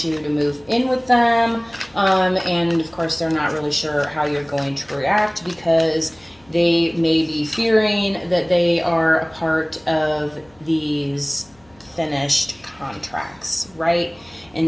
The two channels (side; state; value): left; noise; hum, 30 dB below the sound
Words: you to move in with them. And of course, they're not really sure how you're going to react because they may be fearing that they are a part of these finished contracts, right?